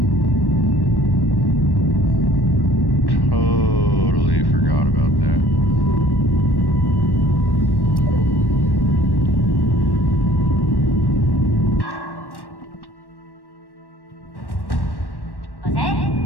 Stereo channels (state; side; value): late; right; 1.1 ms